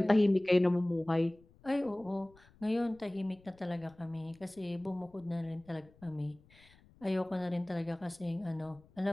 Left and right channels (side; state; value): left; noise; rumble, 28 dB below the sound